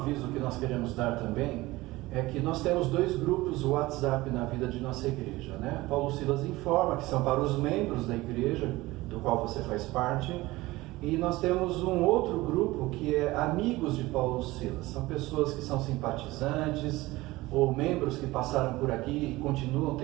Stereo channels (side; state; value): left; quieter; 19.5 dB